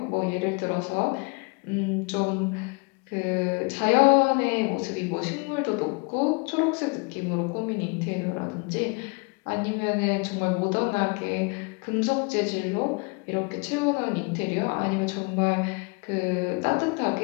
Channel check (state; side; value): quieter; right; 31.7 dB